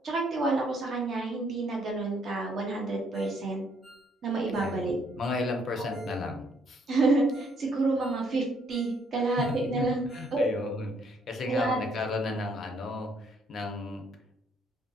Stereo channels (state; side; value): normal; both; correlation 0.68